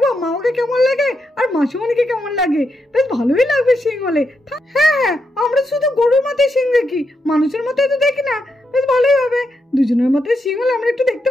মামাকে কেমন লাগে আর মাসিমণিকে কেমন লাগে, বেশ ভালোই লাগবে শিং হলে। হ্যাঁ, আমরা শুধু গরুর মাথায় শিং দেখি, মানুষের মাথায় তো দেখি না। বেশ ভালোই হবে, দুজনের মাথায় শিং হলে আমরা একটু দেখতে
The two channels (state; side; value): normal; both; correlation 0.83